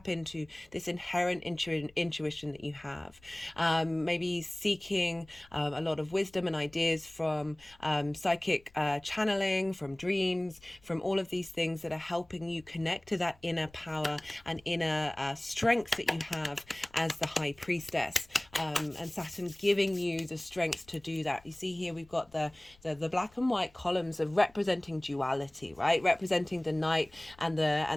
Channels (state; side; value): noise; left; rumble, 28 dB below the sound